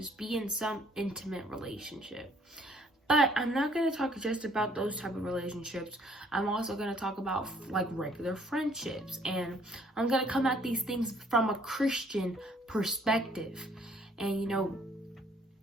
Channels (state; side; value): normal; both; correlation 0.62